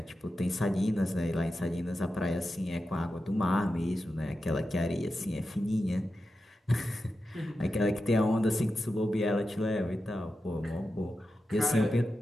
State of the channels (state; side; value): normal; both; correlation 0.90